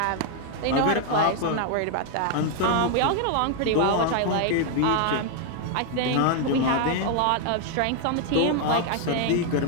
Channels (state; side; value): different; both; correlation 0.00